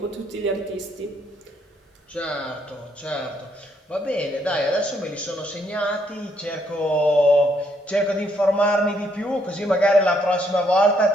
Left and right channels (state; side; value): normal; both; correlation 0.72